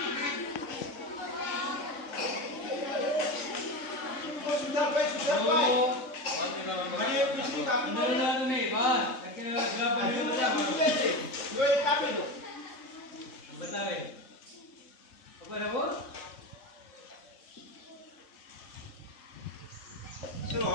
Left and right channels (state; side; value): late; right; 3.6 ms